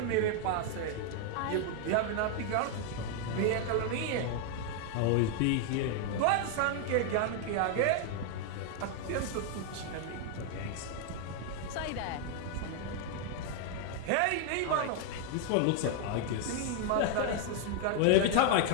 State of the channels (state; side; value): different; both; correlation 0.00